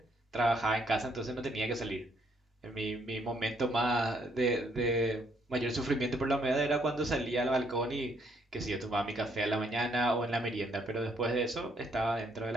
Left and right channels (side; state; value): both; normal; correlation 0.70